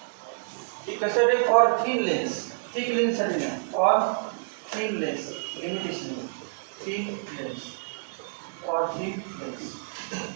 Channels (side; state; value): left; silent; digital silence